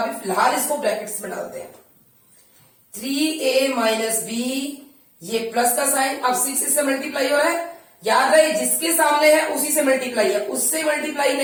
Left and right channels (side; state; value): both; identical; correlation 1.00